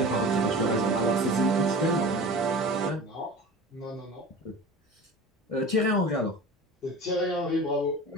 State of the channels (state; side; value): normal; both; correlation 0.36